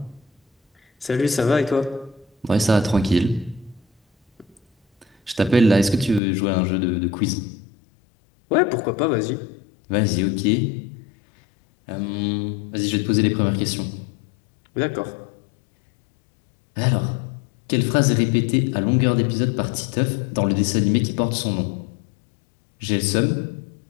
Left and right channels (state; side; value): drops out; right; at 6.2 s